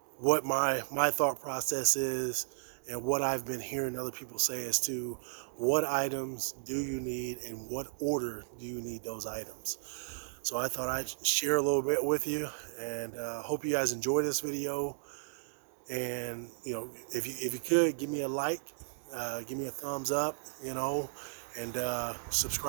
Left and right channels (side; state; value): left; silent; digital silence